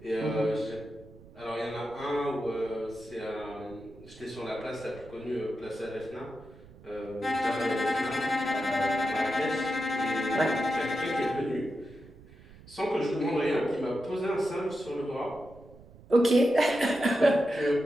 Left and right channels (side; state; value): right; noise; rumble, 21 dB below the sound